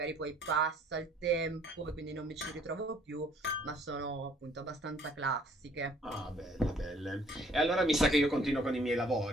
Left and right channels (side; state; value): both; normal; correlation 0.60